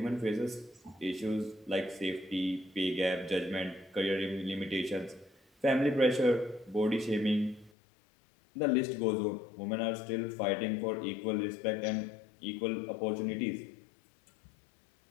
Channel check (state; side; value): drops out; right; at 7.7 s